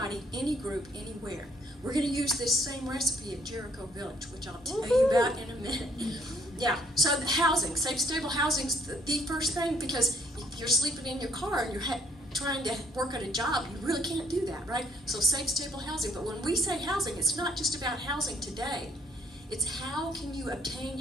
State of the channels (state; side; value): normal; both; correlation 0.66